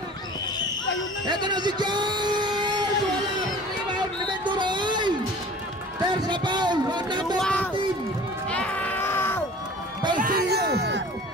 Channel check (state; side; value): normal; both; correlation 0.44